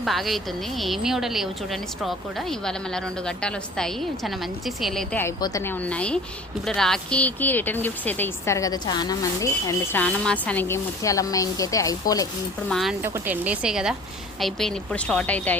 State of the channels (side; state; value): both; normal; correlation 0.44